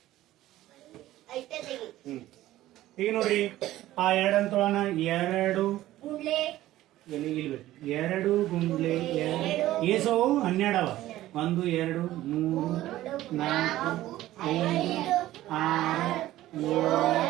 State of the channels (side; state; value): left; quieter; 15.0 dB